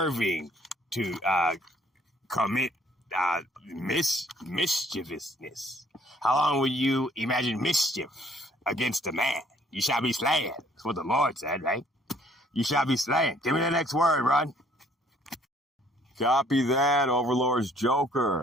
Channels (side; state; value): both; normal; correlation 0.61